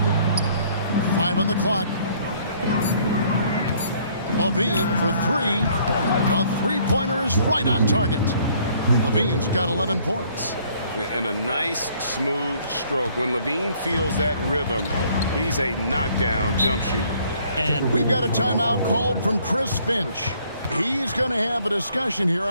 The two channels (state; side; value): inverted; both; correlation -0.61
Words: 5 on the clock. Levine for 3. A three-pointer is right on target. Levine's got 11 points. And a nice, smooth stroke. When Levine feels that rhythm, he's a knockdown jump shooter. And we've got a timeout called from Chris Finch. He's going to have a discussion here